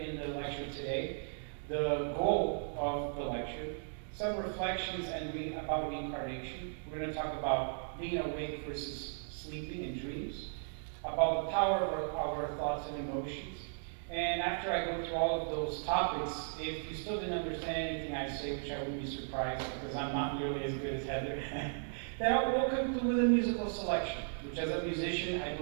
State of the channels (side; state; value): left; silent; digital silence